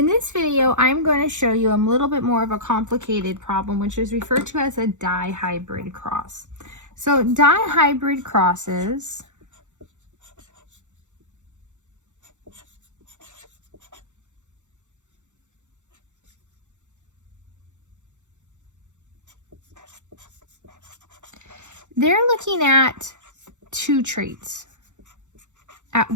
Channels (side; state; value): left; late; 0.85 ms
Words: this video, I'm going to show you a little bit more of a complicated problem, which is referred to as a dihybrid cross. So dihybrid crosses they're looking at two traits at